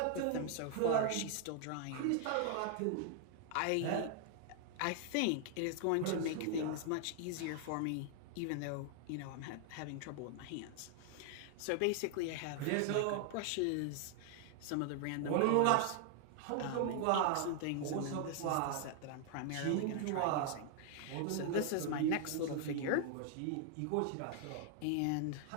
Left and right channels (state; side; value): different; both; correlation 0.00